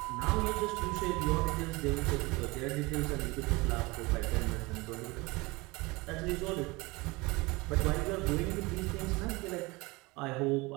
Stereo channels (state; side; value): quieter; left; 23.8 dB